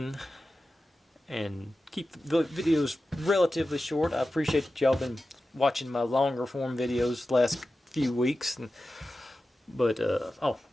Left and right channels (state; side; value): normal; both; correlation 0.93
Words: and keep the videos relatively short. I appreciate that y'all been watching my longer form videos the last few weeks, but